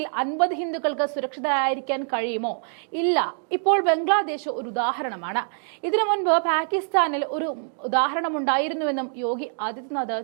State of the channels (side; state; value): left; silent; 62 dB below the other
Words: 50 ഹിന്ദുക്കൾക്ക് സുരക്ഷിതരായിരിക്കാൻ കഴിയുമോ? ഇല്ല. ഇപ്പോൾ ബംഗ്ലാദേശ് ഒരു ഉദാഹരണമാണ്. ഇതിനു മുൻപ് പാകിസ്ഥാനിൽ ഒരു ഉദാഹരണമുണ്ടായിരുന്നുവെന്നും യോഗി ആദിത്യനാഥ്